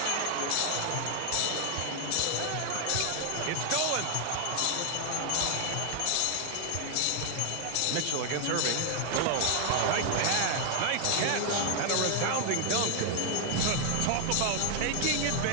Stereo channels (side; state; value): both; different; correlation 0.00